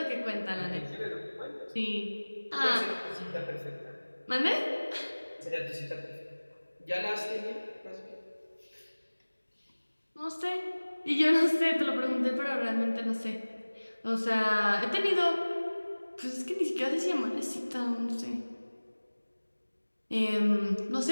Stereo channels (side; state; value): both; inverted; correlation -1.00